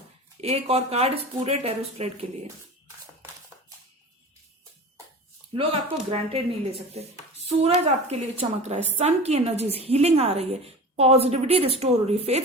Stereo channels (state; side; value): normal; both; correlation 0.35